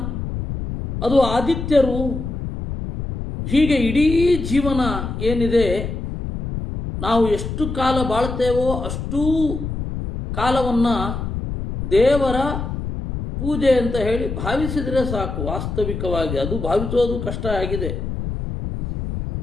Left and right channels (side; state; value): left; noise; rumble, 5 dB below the sound